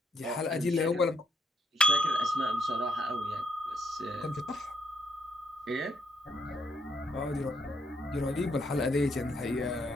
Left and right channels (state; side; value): normal; both; correlation 0.76